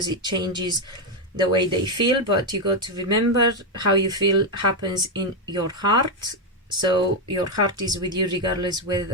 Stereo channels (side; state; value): both; normal; correlation 0.04